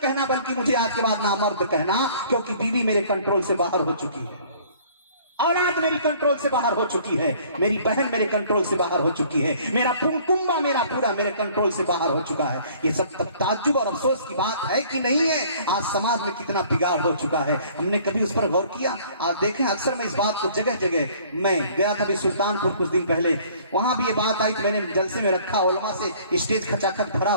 बल्कि मुझे आज के बाद ना मर्द कहना, क्योंकि बीवी मेरे कंट्रोल से बाहर हो चुकी है, औलाद मेरी कंट्रोल से बाहर हो चुकी है, मेरी बहन मेरे कंट्रोल से बाहर हो चुकी है, मेरा कुंबा मेरा पूरा मेरे कंट्रोल से बाहर हो चुका है। ये सब ताज्जुब और अफसोस की बात है कि नहीं है? आज समाज में कितना बिगाड़ हो चुका है, हमने कभी उस पर गौर किया? आज देखें, अक्सर मैं इस बात को जगह जगह, मैं गया था अभी सुल्तानपुर कुछ दिन पहले, वहां भी ये बात आई, मैंने जलसे में रखा, उलमा से स्टेज खचाखच भरा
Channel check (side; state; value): both; inverted; correlation -0.54